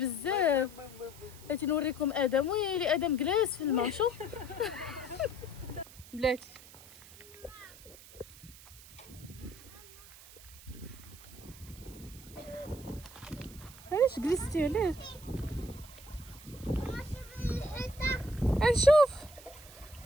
بغيتي نوريكم ادم ويلي ادم جلاس في الماء شوف بلاتي. علاش جلستي علاش نشوف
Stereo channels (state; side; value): noise; right; hiss, 19 dB below the sound